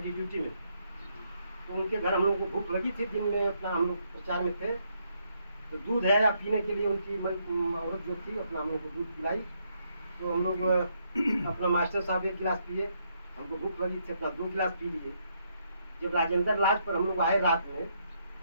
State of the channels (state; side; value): inverted; both; correlation -0.75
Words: ड्यूटी में, तो उनके घर हम लोग को भूख लगी थी, दिन में अपना हम लोग प्रचार में थे। तो दूध है पीने के लिए उनकी औरत जो थी अपना हम लोग को दूध पिलाई। तो हम लोग अपना मास्टर साहब एक गिलास पिए, हमको भूख लगी थी, अपना 2 गिलास पी लिए। जब राजेंद्र लाज पर हम लोग आए रात में,